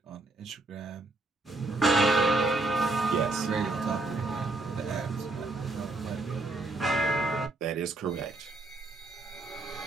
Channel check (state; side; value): quieter; left; 3.0 dB